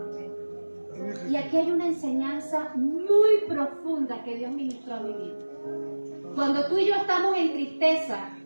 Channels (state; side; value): inverted; both; correlation -1.00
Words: Y aquí hay una enseñanza muy profunda que Dios ministró a mi vida. Cuando tú y yo estamos en tristeza,